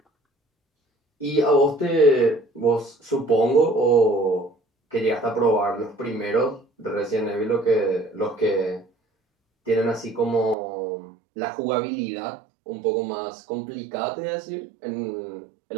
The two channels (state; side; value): drops out; left; at 10.6 s